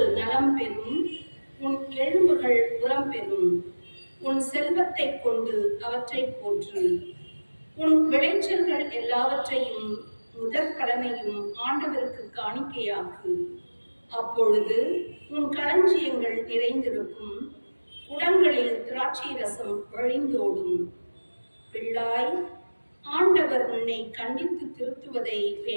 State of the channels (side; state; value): both; inverted; correlation -1.00